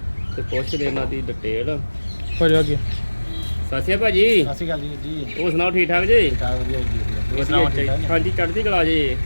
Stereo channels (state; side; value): inverted; both; correlation -1.00